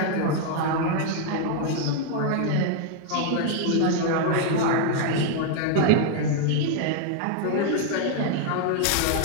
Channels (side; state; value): both; different; correlation 0.00